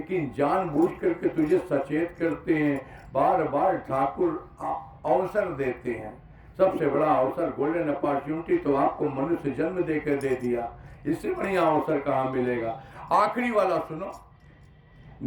जानबूझ करके तुझे सचेत करते हैं। बार बार ठाकुर अवसर देते हैं। सबसे बड़ा अवसर गोल्डन अपॉर्चुनिटी तो आपको मनुष्य जन्म देकर दे दिया, इससे बढ़िया अवसर कहाँ मिलेगा। आखिरी वाला सुनो,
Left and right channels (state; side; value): identical; both; correlation 1.00